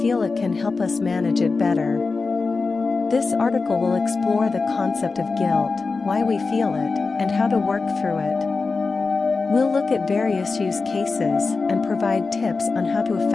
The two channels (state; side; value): quieter; right; 4.2 dB